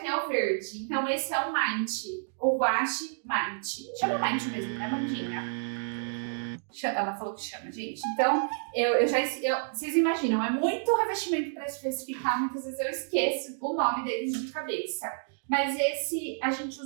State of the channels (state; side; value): silent; left; digital silence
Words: é o verde, então esse é o Mind, o guache Mind. Chama Mind mesmo, né, Mandinha? Ela falou que chama, gente. Então, vocês imaginam, é muito revestimento para especificar, muitas vezes eu esqueço o nome deles de cabeça. Mas esse, a gente